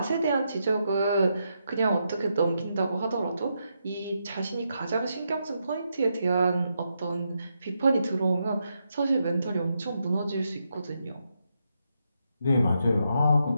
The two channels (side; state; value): both; inverted; correlation -0.82